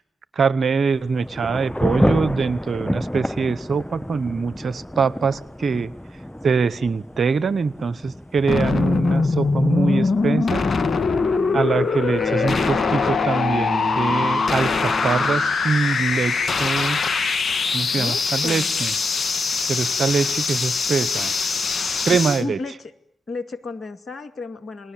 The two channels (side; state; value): both; normal; correlation 0.84